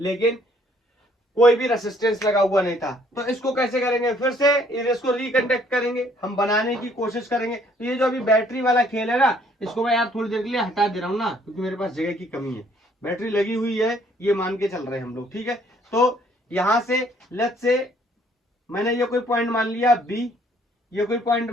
कोई भी रेसिस्टेंस लगा हुआ नहीं था। तो इसको कैसे करेंगे, फिर से इसको रिकंडक्ट करेंगे, हम बनाने की कोशिश करेंगे। तो ये जो अभी बैटरी वाला खेल है ना, इसको मैं यार थोड़ी देर के लिए हटा दे रहा हूं ना, क्योंकि मेरे पास जगह की कमी है। बैटरी लगी हुई है ये मान के चल रहे हैं हम लोग, ठीक है। तो यहां से लेट्स से मैंने ये कोई पॉइंट मान लिया B, ये कोई पॉइंट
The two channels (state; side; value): normal; both; correlation 0.63